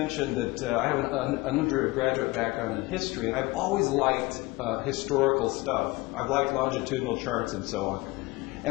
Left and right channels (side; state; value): right; quieter; 21.8 dB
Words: that I have an undergraduate background in history, and I've always liked historical stuff. I've liked longitudinal charts and so on.